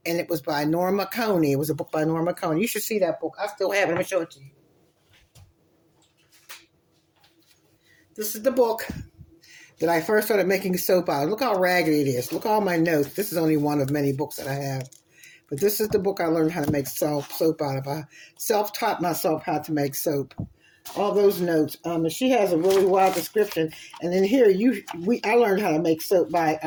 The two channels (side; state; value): both; identical; correlation 1.00